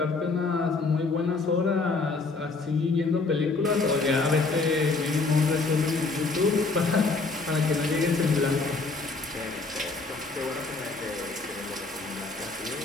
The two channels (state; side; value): quieter; right; 3.8 dB